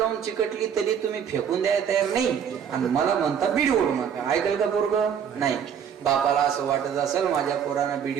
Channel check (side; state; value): left; quieter; 8.0 dB